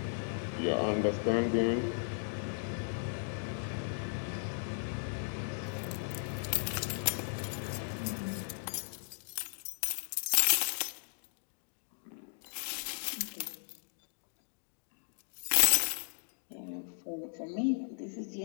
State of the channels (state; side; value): silent; right; digital silence